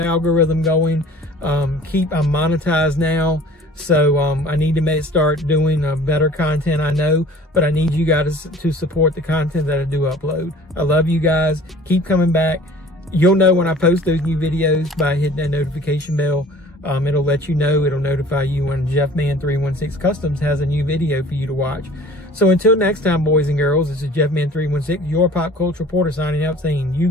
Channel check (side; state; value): both; normal; correlation 0.48